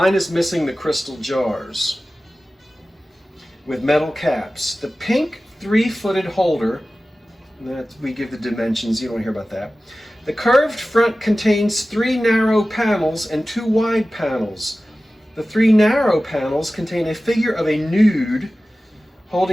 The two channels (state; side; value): normal; both; correlation 0.96